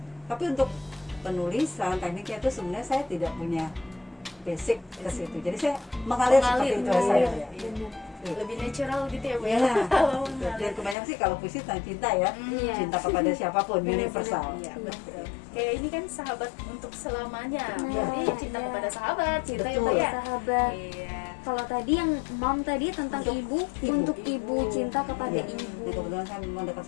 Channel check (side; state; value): right; drops out; at 11.0 s